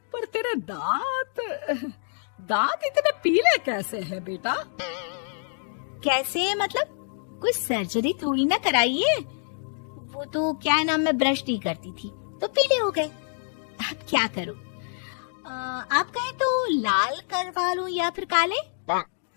पर तेरे दांत इतने पीले कैसे हैं बेटा? कैसे मतलब? कोई सर्जरी थोड़ी ना कराइए। वो तो क्या नाम, मैं ब्रश नहीं करती थी तो पीले हो गए। अब क्या करूं? आप कहें तो लाल करवा लूं या फिर काले?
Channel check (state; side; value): silent; right; 61 dB below the other